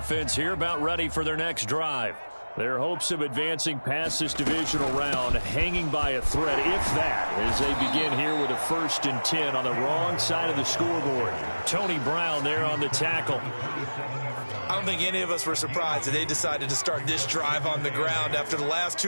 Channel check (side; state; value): both; inverted; correlation -1.00